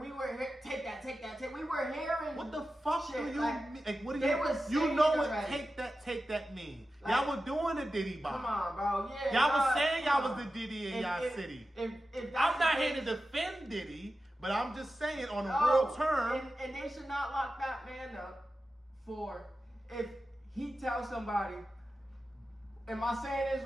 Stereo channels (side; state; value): both; normal; correlation 0.93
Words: we were take that. We were hearing. What the fuck shit, do you mean? Like, what do you know what already. take that mean? Like, y'all were doing the Diddy bomb. Come on, bro. Yeah. Y'all was saying y'all was the Diddy in y'all city. If I'm not here to defend Diddy, but I'm just saying on a real term. And they should not lock that man up for if he tells somebody. Am I saying this